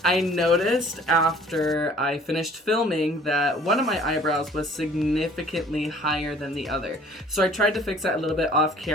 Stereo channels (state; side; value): normal; both; correlation 0.53